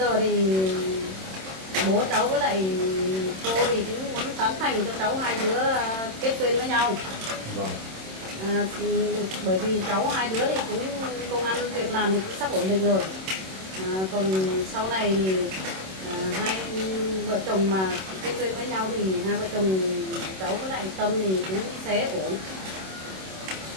thì bố cháu với lại cô thì cũng muốn tán thành cho cháu hai đứa kết duyên với nhau. Vâng. Bởi vì cháu hai đứa thì cũng công ăn việc làm thì cũng sắp ổn định rồi. Còn sau này thì hai vợ chồng mà kết duyên với nhau thì hai vợ chồng cháu với lại Tâm thì cũng sẽ ổn.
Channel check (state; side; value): late; left; 26 ms